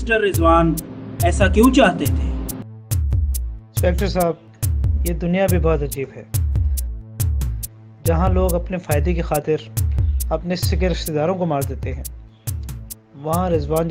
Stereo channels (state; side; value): identical; both; correlation 1.00